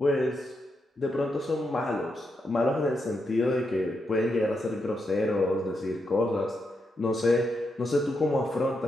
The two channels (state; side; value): normal; both; correlation 0.83